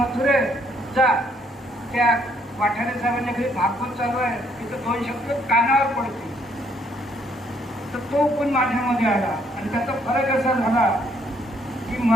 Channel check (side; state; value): both; normal; correlation 0.68